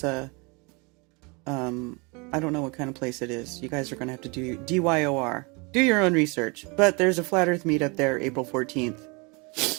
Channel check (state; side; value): quieter; left; 29.5 dB